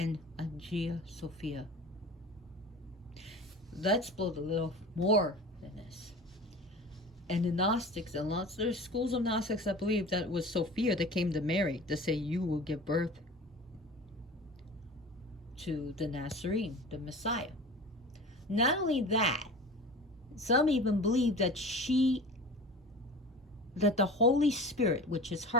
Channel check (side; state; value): both; normal; correlation 0.37